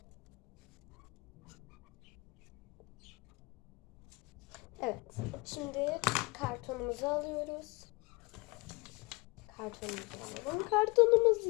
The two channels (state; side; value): quieter; right; 25.9 dB